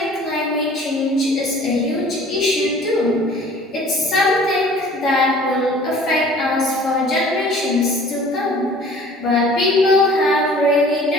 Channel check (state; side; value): normal; both; correlation 0.49